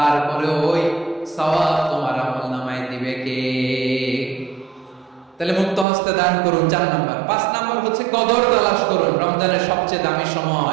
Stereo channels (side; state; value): left; drops out; at 5.9 s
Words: ওই সওয়াব তোমার আমলনামায় দিবে কে? তাহলে মুক্ত হস্তে দান করুন, 4 নাম্বার। 5 নাম্বার হচ্ছে কদর তালাশ করুন। রমজানের সবচেয়ে দামি